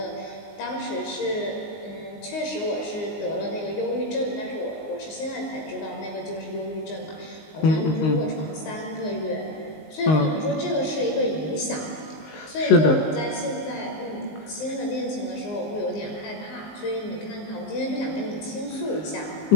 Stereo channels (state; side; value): late; right; 19 ms